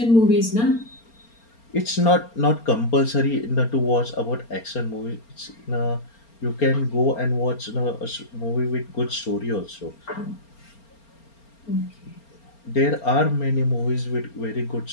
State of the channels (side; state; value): right; late; 4.3 ms